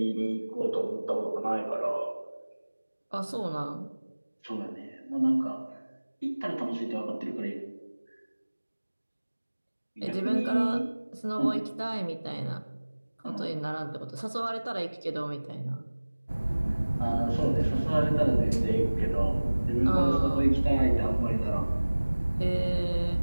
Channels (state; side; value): inverted; both; correlation -1.00